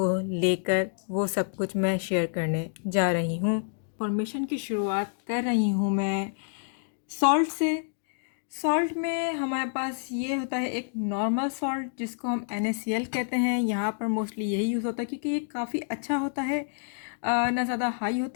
लेकर, वो सब कुछ मैं शेयर करने जा रही हूँ। इंफॉर्मेशन की शुरुआत कर रही हूँ मैं सॉल्ट से। सॉल्ट में हमारे पास ये होता है एक नॉर्मल सॉल्ट जिसको हम NaCl कहते हैं। यहाँ पर मोस्टली यही यूज़ होता है क्योंकि ये काफ़ी अच्छा होता है, ना ज़्यादा हाई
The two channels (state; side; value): silent; right; digital silence